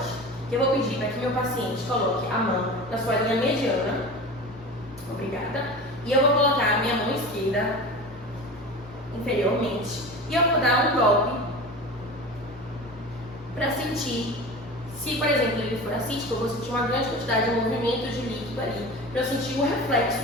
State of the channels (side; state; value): both; normal; correlation 0.33